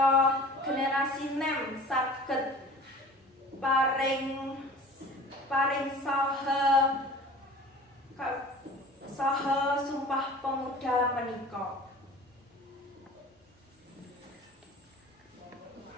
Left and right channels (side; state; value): both; normal; correlation 0.42